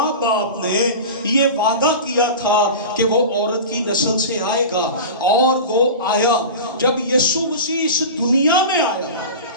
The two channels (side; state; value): both; inverted; correlation -0.30